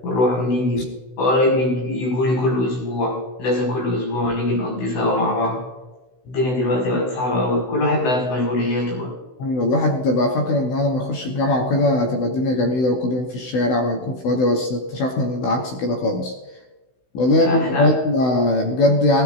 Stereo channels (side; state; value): right; late; 16 ms